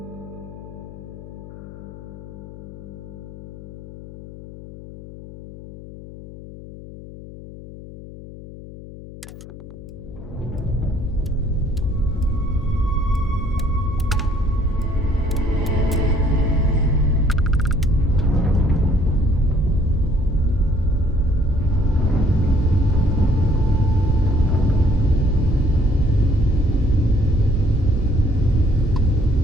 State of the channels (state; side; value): noise; left; hum, 15 dB below the sound